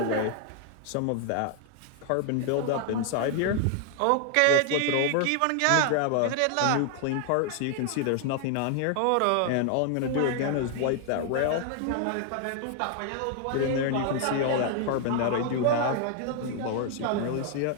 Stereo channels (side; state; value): both; different; correlation 0.00